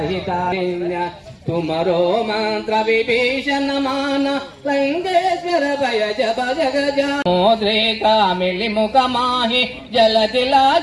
तुमरो मंत्र विभीषण मान लंकेश्वर भय जप जग मोद्रेका मिली मुख माही जल दिला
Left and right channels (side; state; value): both; identical; correlation 1.00